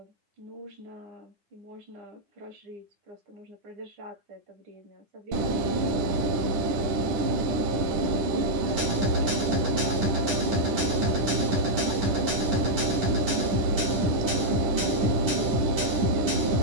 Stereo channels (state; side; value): late; left; 9.6 ms